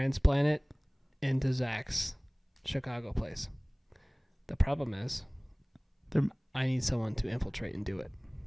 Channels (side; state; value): both; identical; correlation 1.00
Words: it into Zach's Chicago place. The problem is, They're- I need someone to infiltrate and do it.